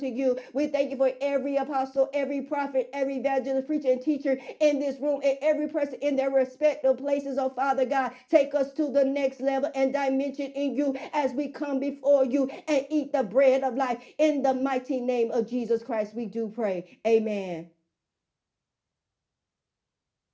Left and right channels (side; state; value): both; identical; correlation 1.00